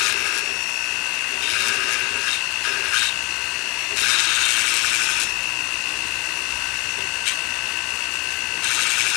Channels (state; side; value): quieter; right; 26.0 dB